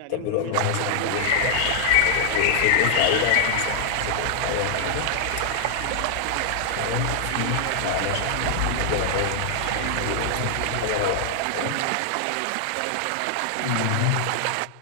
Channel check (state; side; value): different; both; correlation -0.01